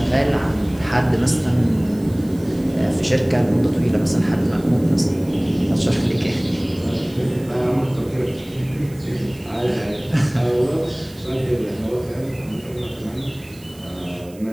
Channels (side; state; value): right; noise; hiss, 24 dB below the sound